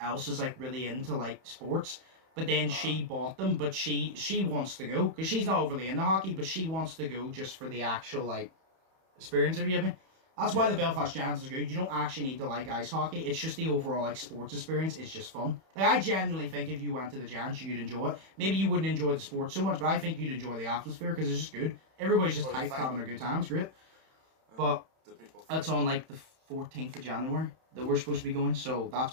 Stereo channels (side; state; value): left; late; 31 ms